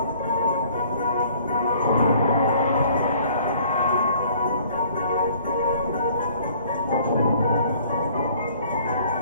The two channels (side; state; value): both; inverted; correlation -0.55